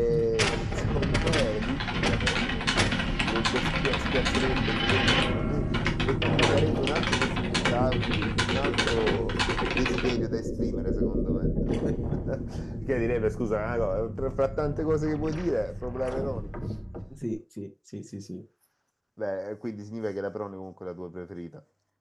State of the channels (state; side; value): identical; both; correlation 1.00